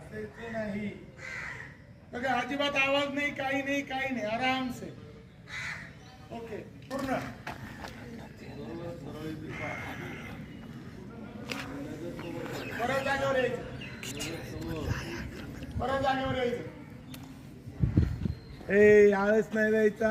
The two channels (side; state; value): both; identical; correlation 1.00